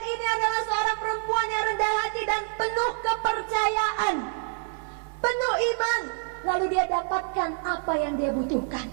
ini adalah seorang perempuan yang rendah hati dan penuh kepercayaan, penuh iman. Lalu dia dapatkan apa yang dia butuhkan.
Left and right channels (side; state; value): left; silent; 60 dB below the other